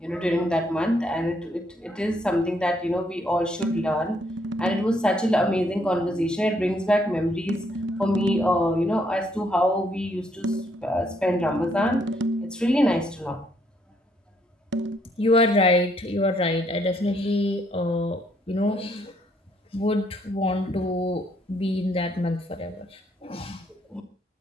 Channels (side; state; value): both; normal; correlation 0.71